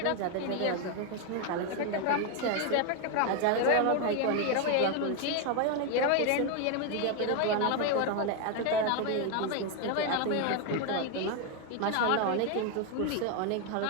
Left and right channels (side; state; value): both; different; correlation 0.01